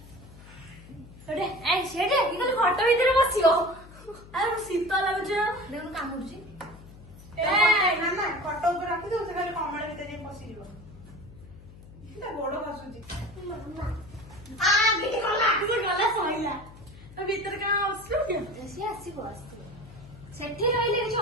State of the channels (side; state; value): left; noise; hum, 19 dB below the sound